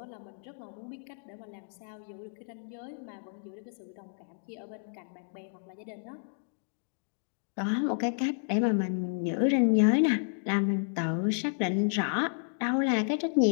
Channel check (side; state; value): right; silent; digital silence